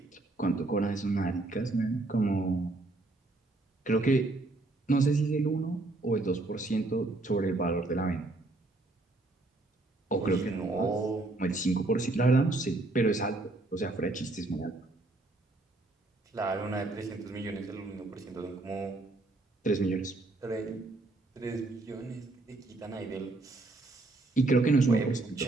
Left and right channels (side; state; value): left; quieter; 3.0 dB